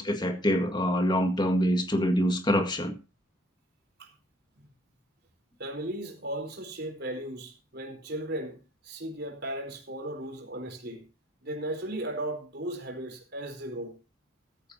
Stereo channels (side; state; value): both; normal; correlation 0.60